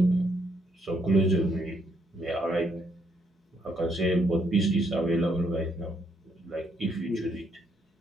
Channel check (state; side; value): normal; both; correlation 0.73